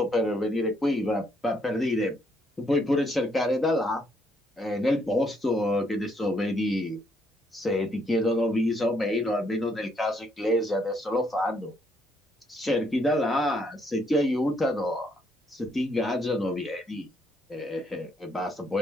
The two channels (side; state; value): both; normal; correlation 0.71